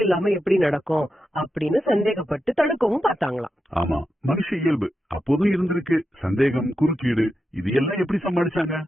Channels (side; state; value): both; normal; correlation 0.88